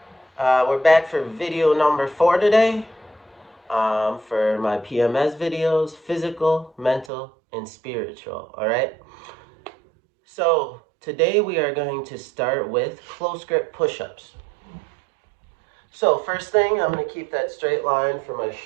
We're back for video number 4 today. For my PMS videos, physical, mental, and spiritual. All right. So today we are going to start with close grip push-ups. So first thing, I'm going to keep that straight line from my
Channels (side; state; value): left; drops out; at 7.1 s